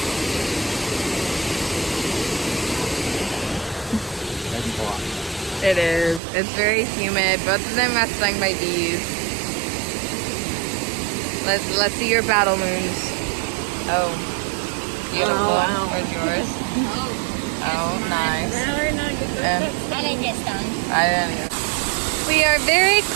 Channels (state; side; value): drops out; left; at 6.2 s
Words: It is. It's very humid. Both of them are stung by bees. Let's see your battle moons. Oh, beautiful. Oh, wow. Where's yours? Oh, nice. I didn't get stung. I didn't either. We are very